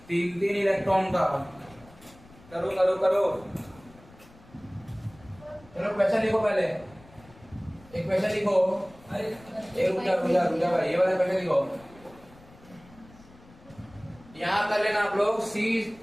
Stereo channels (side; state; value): left; noise; rumble, 24 dB below the sound